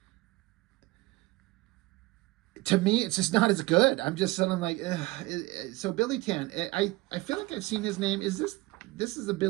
to me, it's just not as good. I'm just suddenly like, ugh. So Billy Tan, I feel like I've seen his name. Is this is a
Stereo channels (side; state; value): left; quieter; 21.2 dB